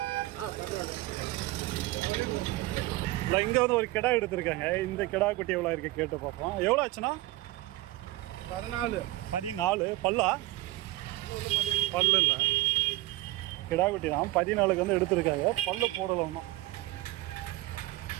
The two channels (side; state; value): left; quieter; 18.4 dB